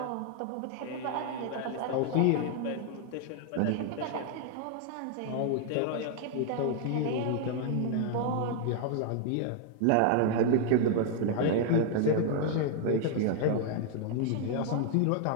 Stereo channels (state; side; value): different; both; correlation 0.00